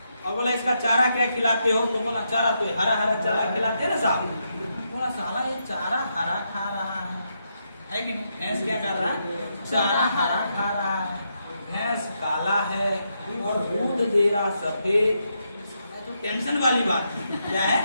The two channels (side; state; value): both; inverted; correlation -0.81